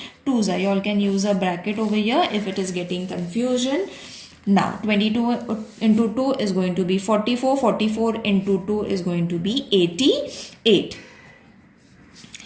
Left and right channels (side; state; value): both; identical; correlation 1.00